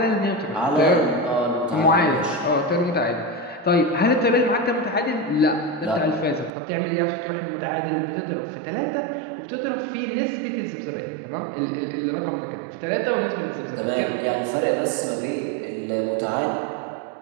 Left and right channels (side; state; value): left; drops out; at 6.5 s